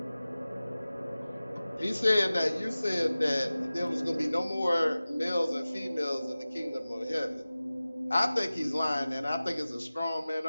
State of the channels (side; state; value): both; inverted; correlation -0.97